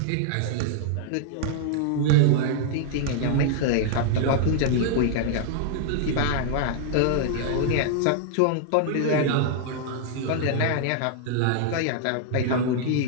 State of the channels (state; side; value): different; both; correlation 0.00